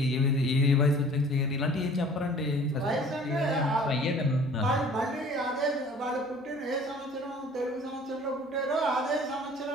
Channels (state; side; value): normal; both; correlation 0.49